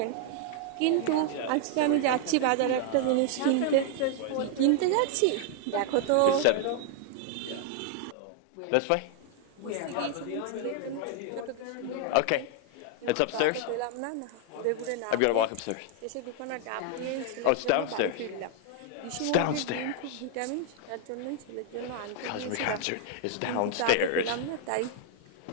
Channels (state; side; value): different; both; correlation 0.00